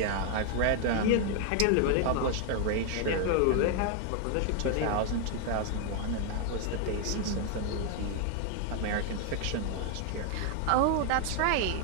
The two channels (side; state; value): both; different; correlation 0.00